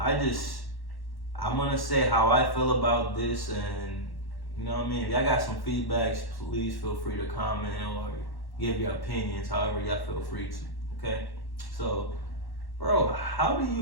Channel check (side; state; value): right; late; 1.1 ms